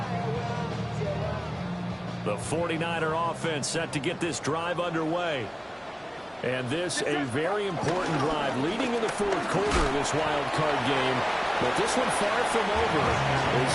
The 49er offense set to get this drive underway. And this a very important drive leading in the fourth quarter of this wild card game. But this one far from over as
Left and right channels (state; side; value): identical; both; correlation 1.00